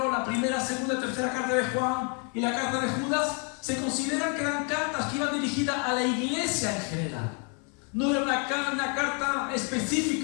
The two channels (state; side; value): quieter; right; 37.2 dB